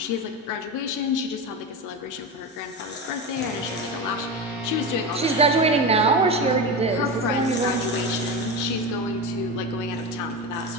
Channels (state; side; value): normal; both; correlation 0.21